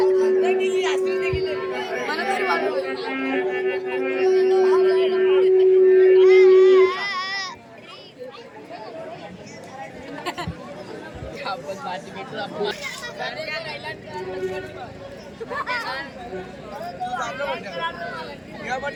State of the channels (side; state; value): both; identical; correlation 1.00